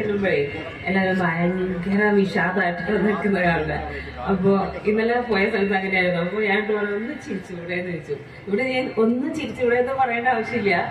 എല്ലാവരും ഭയങ്കര വിഷാദമായിട്ട് നിൽക്കുന്ന കാണുന്നത്. അപ്പോ ഇന്നലെ പോയ സ്ഥലത്ത് അങ്ങനെയായിരുന്നു. അപ്പൊ ഞാൻ ഒന്ന് ചിരിച്ചുകൂടെ എന്ന് ചോദിച്ചു. ഇവിടെ ഞാൻ ഒന്ന് ചിരിച്ചുകൂടെ എന്ന് പറയേണ്ട ആവശ്യമില്ല,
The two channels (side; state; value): both; identical; correlation 1.00